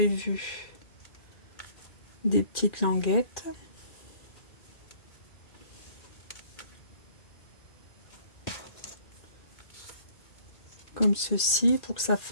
des petites languettes. Comme ceci, pour que ça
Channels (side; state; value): right; late; 2.4 ms